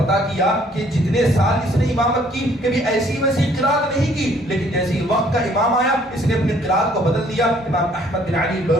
کیا کہ جتنے سال اس نے امامت کی کبھی ایسی ویسی قرات نہیں کی، لیکن جیسے ہی وقت کا امام آیا اس نے اپنی قرات کو بدل دیا. امام احمد بن علی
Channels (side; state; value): both; normal; correlation 0.61